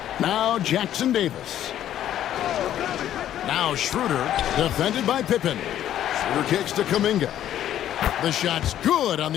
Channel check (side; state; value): right; quieter; 11.5 dB